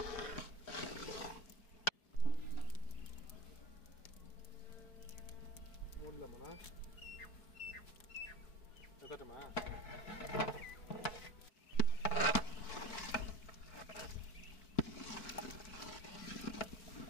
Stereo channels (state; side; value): late; right; 4.5 ms